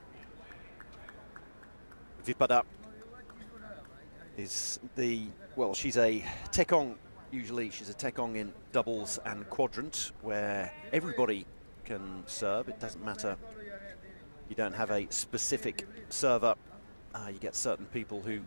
Vipada is she's a tekong. Usually she's a tekong in doubles and quadrant, where everybody can serve. It doesn't matter, you don't have a specific server. You get certain people who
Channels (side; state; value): both; inverted; correlation -1.00